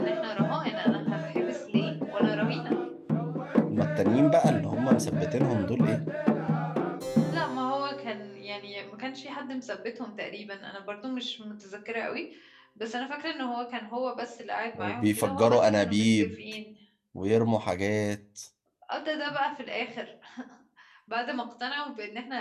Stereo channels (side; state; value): both; identical; correlation 1.00